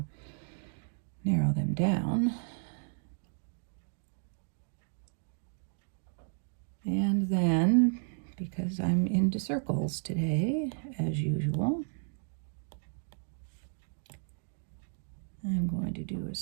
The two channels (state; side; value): silent; left; 56 dB below the other